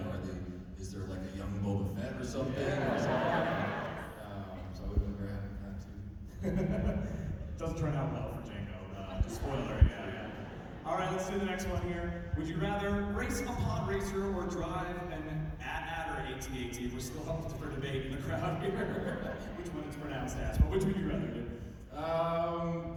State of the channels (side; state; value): both; identical; correlation 1.00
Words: is there like a young Boba Fett or something? So I would have been very happy with that too. Doesn't turn out well for Django. Spoiler, yeah. All right, let's do the next one here. Would you rather race a pod racer or drive an AT-AT or AT-AT? We're still up for debate in the crowd here. Which one is pronounced as, but which would you rather do?